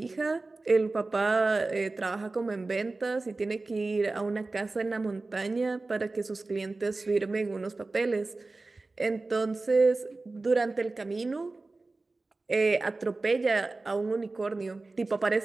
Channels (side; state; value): left; quieter; 3.4 dB